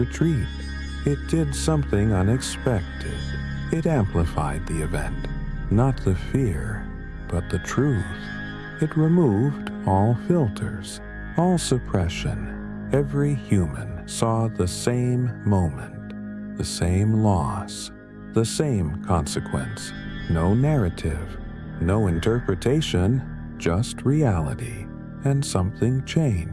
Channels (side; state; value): both; identical; correlation 1.00